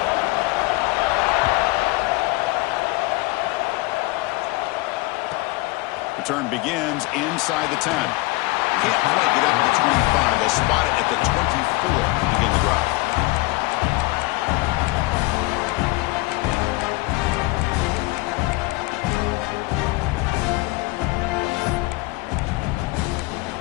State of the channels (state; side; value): quieter; right; 22.4 dB